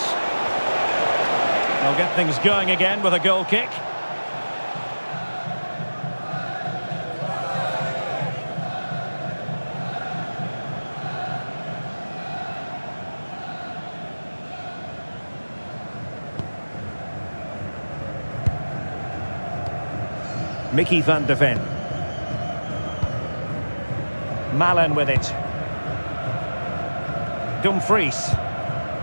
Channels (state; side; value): inverted; both; correlation -1.00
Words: They'll get things going again with a goal kick. Mickey van de Ven. Malen with it. Dumfries.